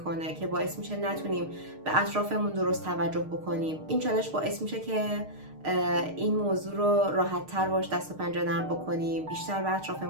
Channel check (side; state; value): left; late; 6.5 ms